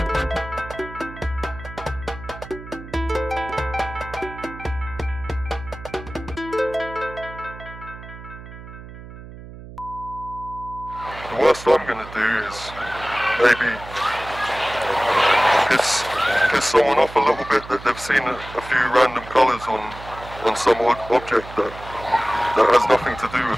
The worst I'm gonna do is maybe piss someone off a little bit that they've seen a few random colours on some object that has nothing to do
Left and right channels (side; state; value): right; noise; hum, 15 dB below the sound